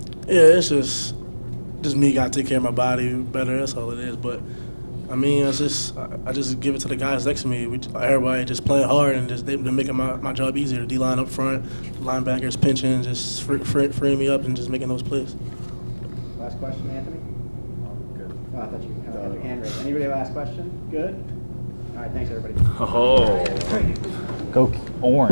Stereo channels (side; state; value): both; inverted; correlation -1.00